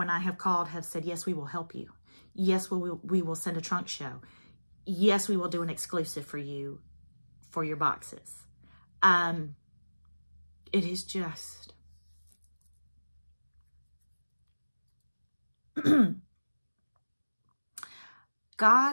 I have called, have said, yes, we will help you. Yes, we will send a trunk show. Yes, we will do an exclusive for you for your boxes. It is just...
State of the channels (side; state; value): both; inverted; correlation -1.00